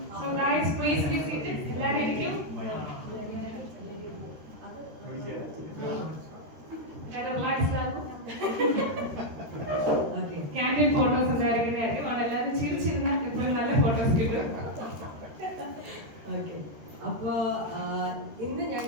guys, please be seated. എല്ലാവരും ഇരിക്കും. Candid photos ഉണ്ടായിരിക്കുന്നതായിരിക്കും. അവിടെ എല്ലാവരും ചിരിച്ചിരുന്ന എപ്പോഴും നല്ല ഫോട്ടോസ് കിട്ടും. അപ്പോ ഇന്ന്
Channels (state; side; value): late; left; 13 ms